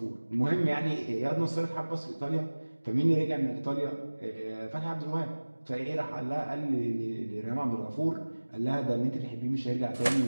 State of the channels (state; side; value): inverted; both; correlation -1.00